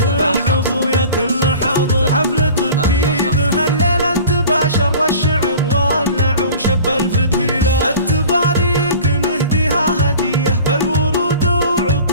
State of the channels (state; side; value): inverted; both; correlation -0.41